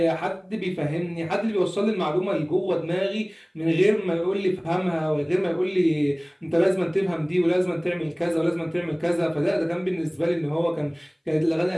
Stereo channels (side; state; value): both; identical; correlation 1.00